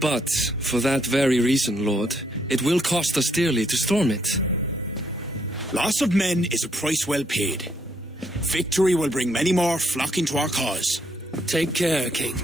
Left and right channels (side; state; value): both; normal; correlation 0.73